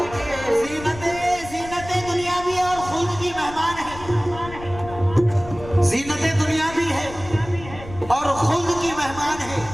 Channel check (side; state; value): left; noise; rumble, 14 dB below the sound